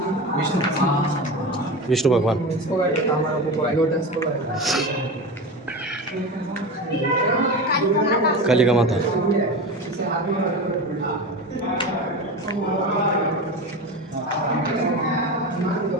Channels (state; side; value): normal; both; correlation 0.25